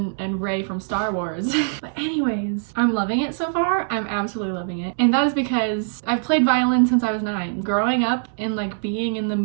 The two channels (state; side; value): silent; left; digital silence